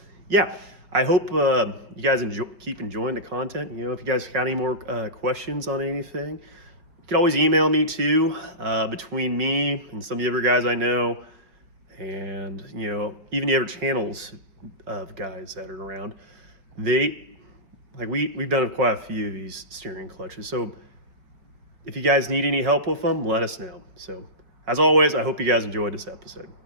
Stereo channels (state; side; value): late; left; 5.2 ms